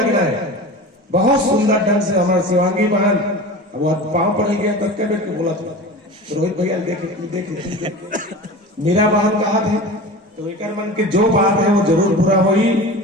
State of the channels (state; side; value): normal; both; correlation 0.33